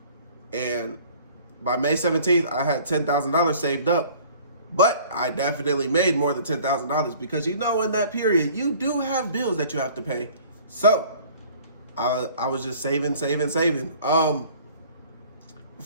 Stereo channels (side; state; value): both; inverted; correlation -0.50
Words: And by May 17th, I had $10,000 saved up. But I definitely made more than $10,000 because, you know, in that period, you do have bills that you have to pay. So I was just saving. Before